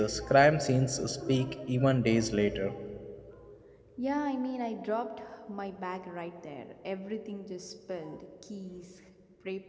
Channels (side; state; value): both; identical; correlation 1.00